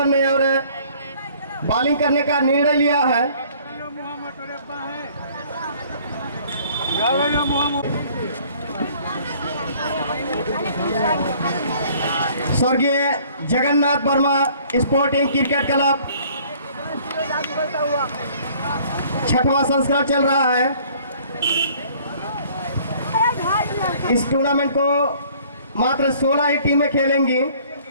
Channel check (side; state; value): both; inverted; correlation -0.56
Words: में और बॉलिंग करने का निर्णय लिया है। स्वर्गीय Jagannath Verma sporting cricket club 6वां संस्करण चल रहा है। इस टूर्नामेंट को मात्र 16 ही टीमें खेलेंगी।